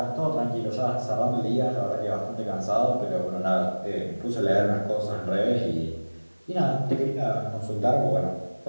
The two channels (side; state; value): both; inverted; correlation -1.00